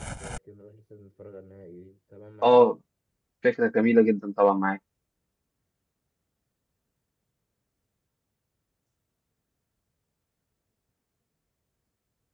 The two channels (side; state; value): both; identical; correlation 1.00